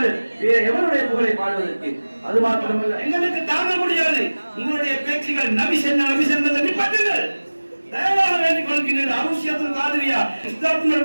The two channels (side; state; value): both; inverted; correlation -1.00